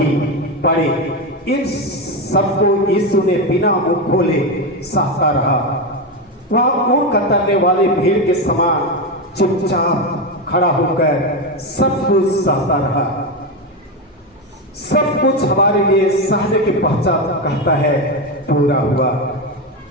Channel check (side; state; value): both; normal; correlation 0.13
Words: पड़े। इन सबको यीशु ने बिना मुंह खोले सहता रहा। वह ऊँट कतरने वाले भीड़ के समान चुपचाप खड़ा होकर सब कुछ सहता रहा। सब कुछ हमारे लिए सहने के पश्चात कहता है पूरा हुआ,